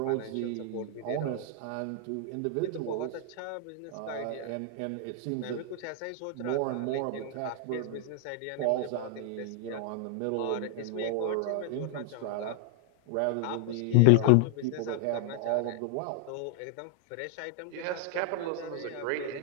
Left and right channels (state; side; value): different; both; correlation 0.00